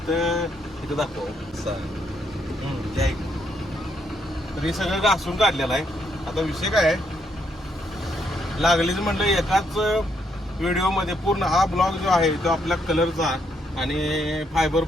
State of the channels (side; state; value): both; normal; correlation 0.74